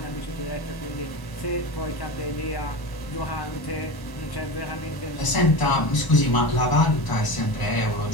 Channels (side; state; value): right; late; 1.0 ms